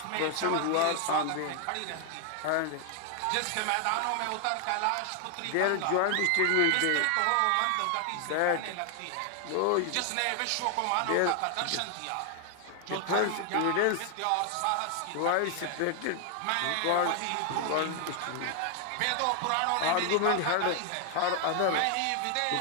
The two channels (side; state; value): both; different; correlation 0.00